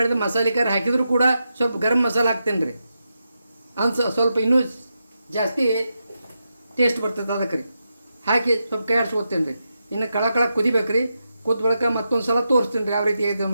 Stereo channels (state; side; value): inverted; both; correlation -0.87